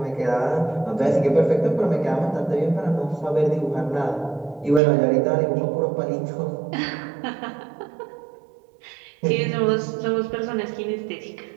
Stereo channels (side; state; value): left; drops out; at 4.8 s